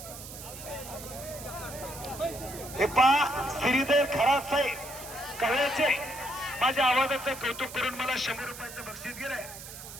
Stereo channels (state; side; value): noise; right; hiss, 13 dB below the sound